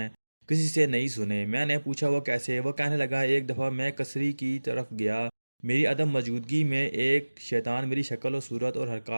کسی سے نہیں سنے۔ میں نے پوچھا، وہ کیسے؟ وہ کہنے لگا، ایک دفعہ میں کسری کی طرف گیا۔ میری عدم موجودگی میں ایک شیطان میری شکل و صورت اور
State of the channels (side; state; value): both; inverted; correlation -1.00